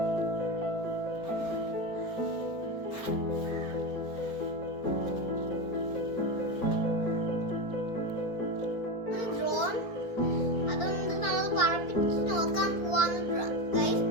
ഡ്രോൺ അതൊന്ന് നമ്മൾ പറപ്പിച്ച് നോക്കാൻ പോവാന്ന് ഗൈസ്.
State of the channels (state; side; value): late; right; 4.4 ms